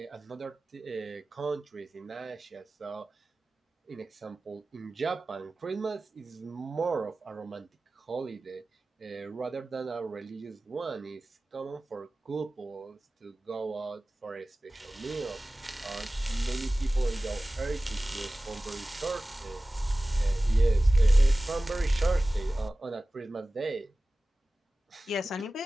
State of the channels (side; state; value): both; normal; correlation 0.97